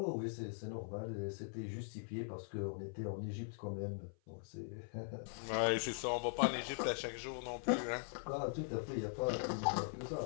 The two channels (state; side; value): silent; right; 50 dB below the other